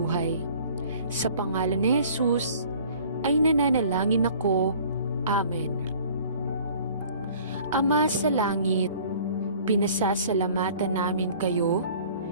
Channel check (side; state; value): both; inverted; correlation -0.50